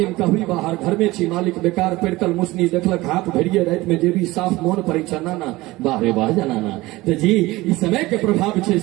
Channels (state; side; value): quieter; left; 19.6 dB